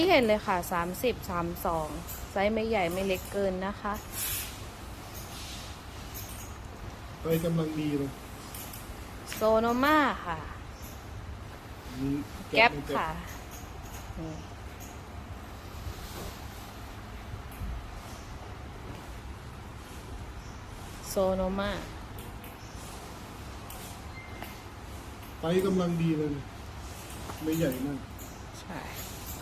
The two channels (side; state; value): both; identical; correlation 1.00